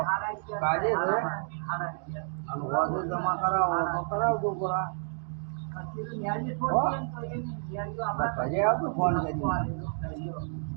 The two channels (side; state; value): left; silent; 58 dB below the other